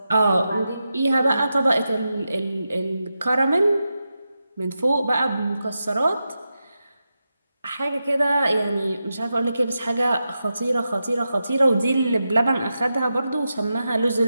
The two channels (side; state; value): both; inverted; correlation -0.89